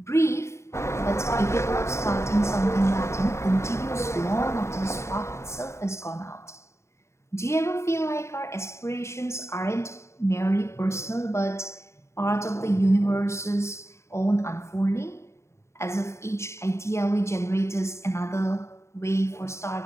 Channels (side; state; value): right; late; 0.13 ms